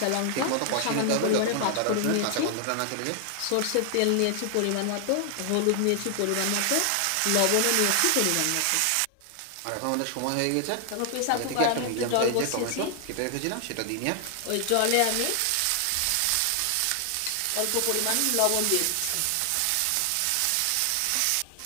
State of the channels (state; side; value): different; both; correlation 0.00